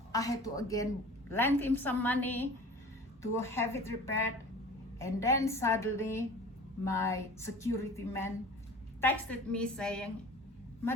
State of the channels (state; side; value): normal; both; correlation 0.41